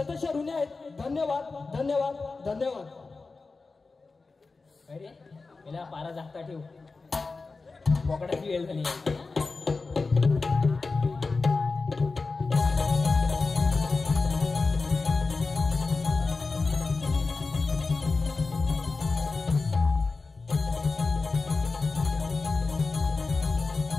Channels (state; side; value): quieter; right; 4.0 dB